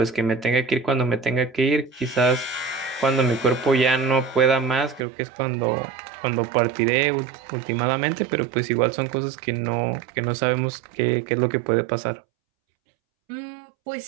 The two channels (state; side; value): drops out; left; at 5.0 s